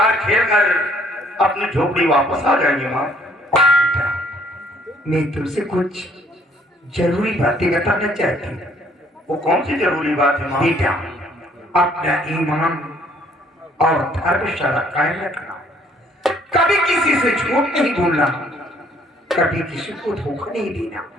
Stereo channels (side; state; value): both; normal; correlation 0.62